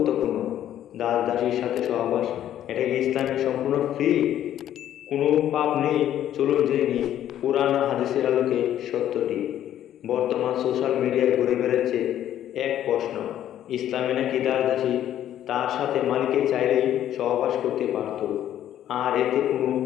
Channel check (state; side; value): quieter; right; 11.4 dB